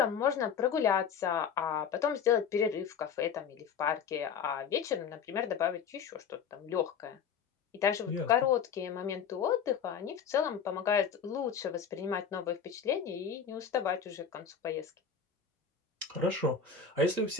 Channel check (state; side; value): quieter; right; 6.9 dB